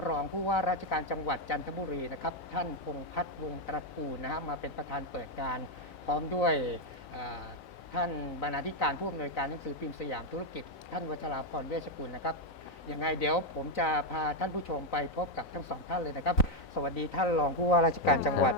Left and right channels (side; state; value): right; late; 3.9 ms